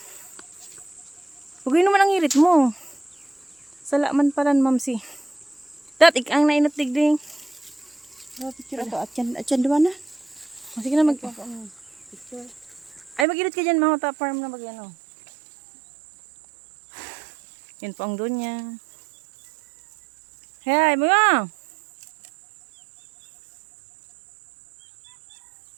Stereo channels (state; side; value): drops out; left; at 13.2 s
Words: Huwag naman ang irit mo. Salaman pala, mamsi. Dat, ang nainatig din. Picture ato, atyan duwa na. Sige na, Picture. ay, mag-irit ka dyan, mga farm na mag-ano. Yan po ang Donya. Hey, mga!